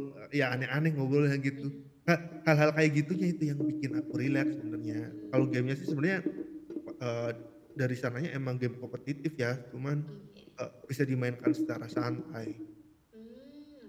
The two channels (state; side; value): identical; both; correlation 1.00